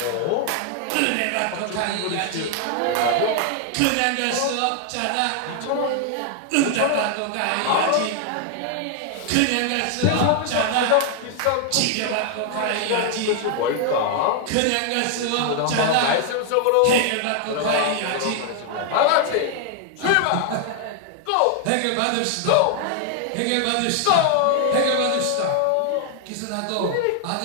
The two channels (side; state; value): both; different; correlation 0.00